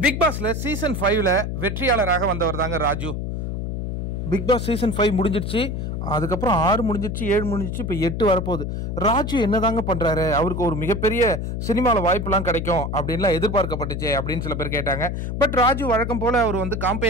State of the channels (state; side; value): noise; left; hum, 3 dB below the sound